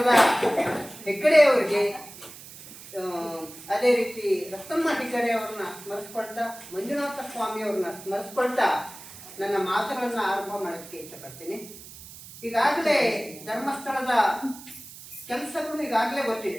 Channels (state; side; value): noise; right; hiss, 16 dB below the sound